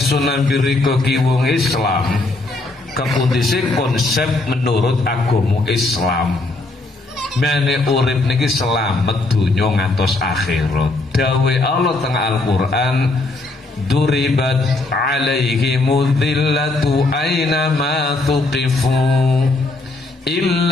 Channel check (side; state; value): right; quieter; 3.1 dB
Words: nambirika ki wong Islam, kepundisi konsep menurut agama Islam. Mene urip niki selamat dunya ngantos akhirat. Dawe Allah teng Al-Qur'an, duribat alaihimudz dzillatu aina ma tuqifu